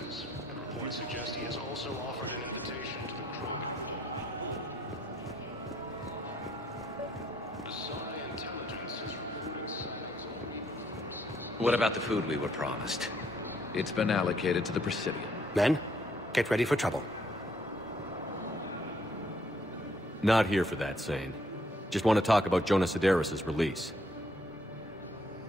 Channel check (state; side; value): normal; both; correlation 0.68